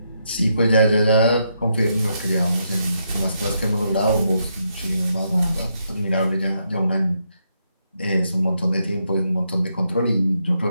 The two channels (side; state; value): both; inverted; correlation -0.79